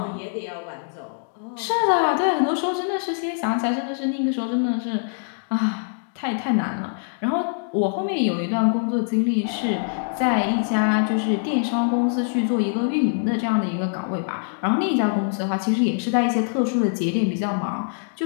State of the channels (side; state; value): right; silent; digital silence